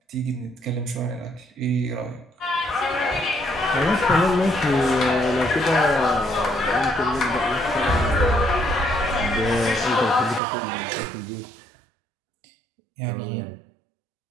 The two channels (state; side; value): drops out; left; at 10.4 s